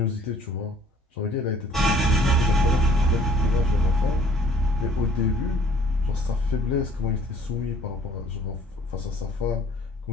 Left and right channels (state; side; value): normal; both; correlation 0.56